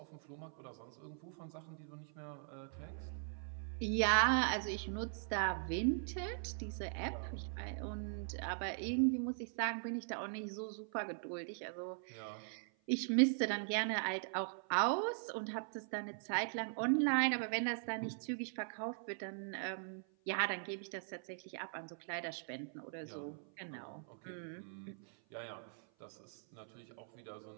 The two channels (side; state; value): left; silent; 50 dB below the other